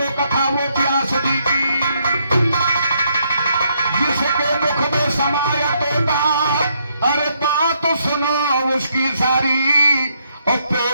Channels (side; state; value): both; inverted; correlation -0.74